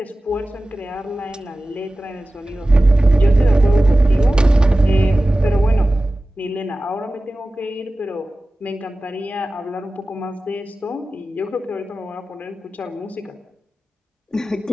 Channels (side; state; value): both; normal; correlation 0.96